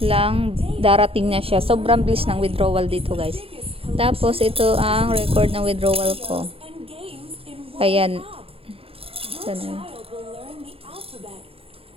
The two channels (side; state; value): left; late; 0.27 ms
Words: lang, darating na siya. Sobrang bilis ng withdrawal dito guys. Tapos, ito ang record ng withdrawal ko. Ayan.